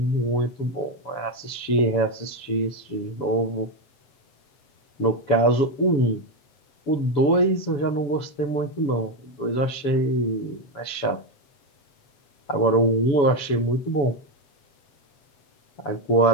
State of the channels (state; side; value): late; right; 7.1 ms